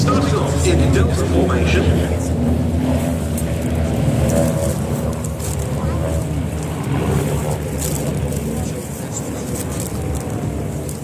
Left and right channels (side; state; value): both; identical; correlation 1.00